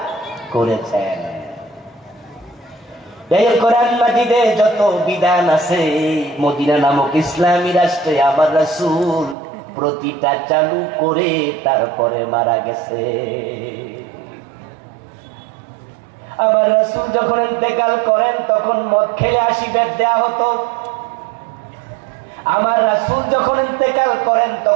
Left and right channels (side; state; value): left; drops out; at 9.3 s